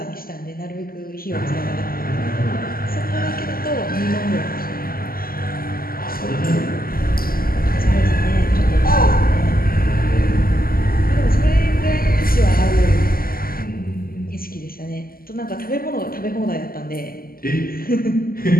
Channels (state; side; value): late; right; 0.42 ms